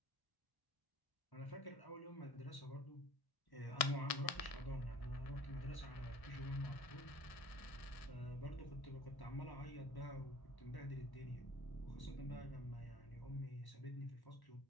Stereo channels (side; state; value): right; late; 1.6 ms